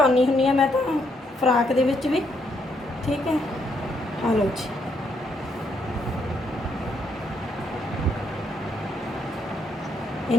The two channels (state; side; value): normal; both; correlation 0.74